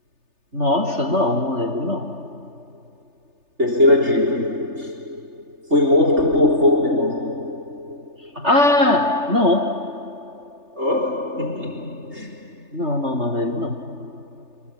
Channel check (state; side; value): late; left; 3.3 ms